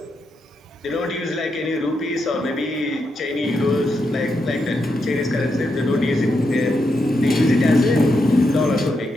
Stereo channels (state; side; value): normal; both; correlation 0.83